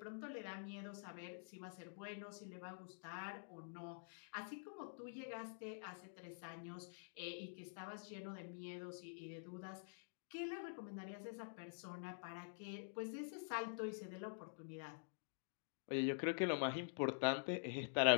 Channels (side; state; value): right; silent; digital silence